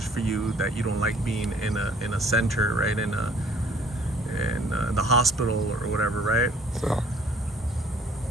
for you, that you don't like being in a center, right? In the hospital or whatever, right?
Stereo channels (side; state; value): both; normal; correlation 0.56